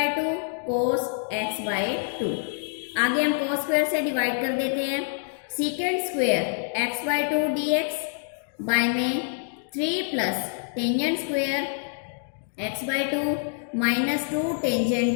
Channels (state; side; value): silent; right; digital silence